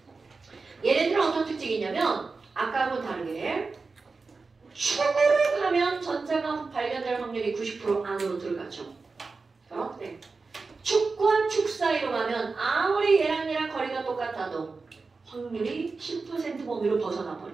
얘네들은 어떤 특징이 있냐면 아까하고 다르게 축으로 가면 전자가 발견될 확률이 90% 안으로 들어가죠. 그런데 축과 축 사이로 가면 아무리 얘랑 거리가 똑같아도 확률이 10% 범위로 벗어나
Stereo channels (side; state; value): left; quieter; 4.2 dB